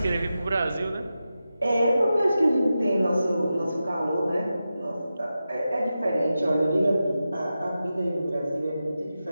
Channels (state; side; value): inverted; both; correlation -0.92